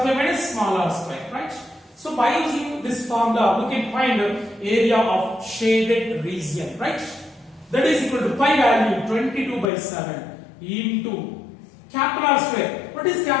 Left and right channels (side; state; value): right; drops out; at 9.7 s